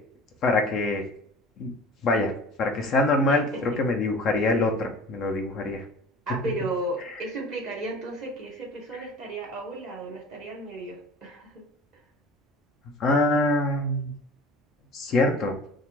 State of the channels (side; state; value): both; normal; correlation 0.42